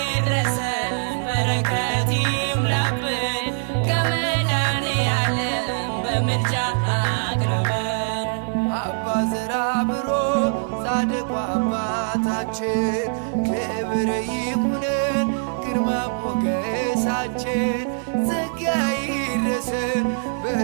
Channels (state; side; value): silent; left; digital silence